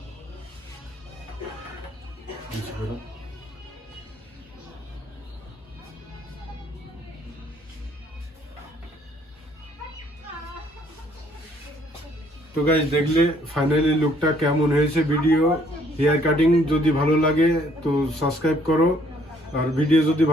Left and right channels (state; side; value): normal; both; correlation 0.64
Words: বুঝতে পারো? তো গাইস দেখলে ফাইনালি লুকটা কেমন হয়েছে। ভিডিও হেয়ার কাটিং যদি ভালো লাগে তো সাবস্ক্রাইব করো, আর ভিডিও যদি